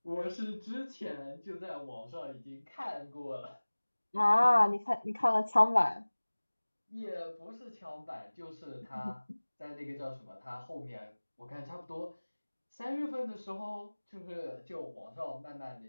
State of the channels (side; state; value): both; inverted; correlation -1.00